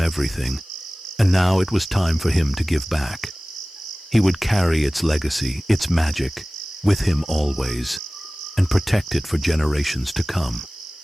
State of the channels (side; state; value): both; normal; correlation 0.98